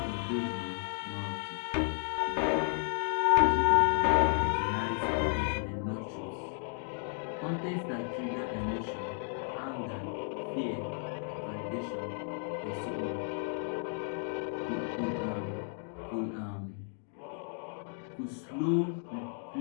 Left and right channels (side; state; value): right; silent; 56 dB below the other